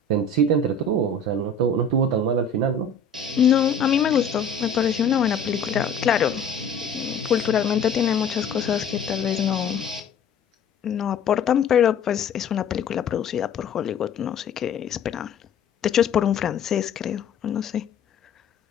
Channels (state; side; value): quieter; right; 4.6 dB